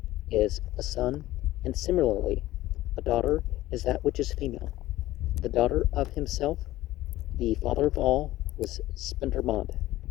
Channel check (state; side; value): quieter; right; 16.1 dB